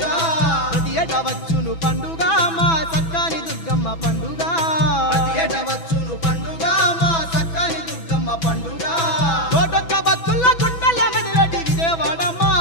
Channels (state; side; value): late; right; 6.0 ms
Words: ప్రతి ఏటా వచ్చును పండుగ మా సక్కాని దుర్గమ్మ పండుగ ప్రతి ఏట వచ్చును పండుగ మా సక్కాని దుర్గమ్మ పండుగ కోటొక్క భక్తుల గుండెల మెదలటి విజయవాడ మా